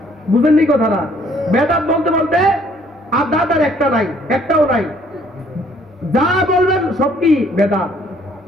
বুঝেননি কথাটা? বেদাত বলতে বলতে আর দাঁত আর একটা নাই, একটাও নাই। যা বলবেন সব কি বেদাত।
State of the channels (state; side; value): normal; both; correlation 0.62